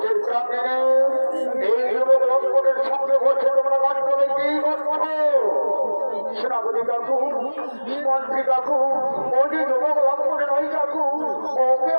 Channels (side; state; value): both; inverted; correlation -1.00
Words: চিন্তা নেই, এই যুবক লঙ্ঘনের সঙ্গে বসে তোমরা গাছ করে কি করছো? সেনাপতি কাকু, মন্ত্রী কাকু, ও যে যুবক লঙ্ঘনে নয় কাকু, ওকে